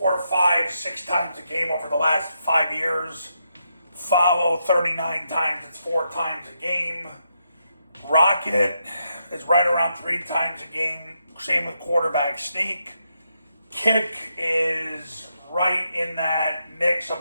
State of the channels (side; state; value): both; inverted; correlation -0.81